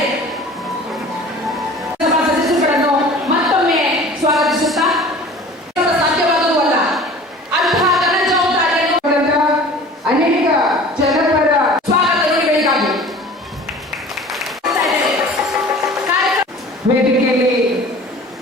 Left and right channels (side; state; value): both; normal; correlation 0.43